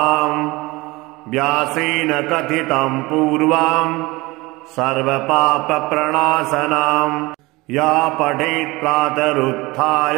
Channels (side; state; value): left; quieter; 22.2 dB